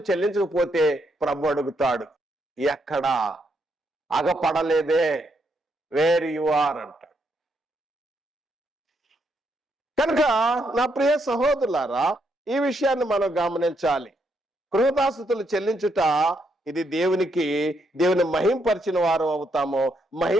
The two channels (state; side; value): normal; both; correlation 0.77